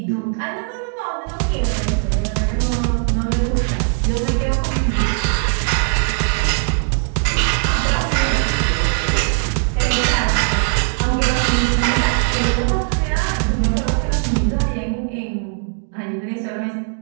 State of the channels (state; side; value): silent; left; digital silence